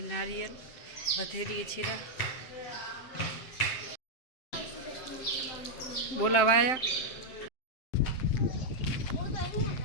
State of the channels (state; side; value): late; right; 7.7 ms